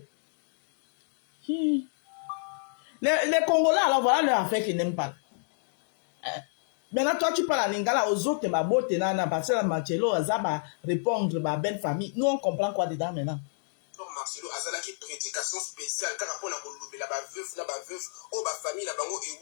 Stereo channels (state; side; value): silent; right; digital silence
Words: Les Congolais, alors voilà leur affaire qu'ils n'aiment pas. Hein. Maintenant, toi, tu parles en lingala aux autres, ma beauté, nana, parce que Marcelo, ça va répondre, ma belle famille. Nous, on comprend quoi dedans maintenant. Marcelo azalaki prédication spéciale car pour la kolobela ba veuf o ba famille la bango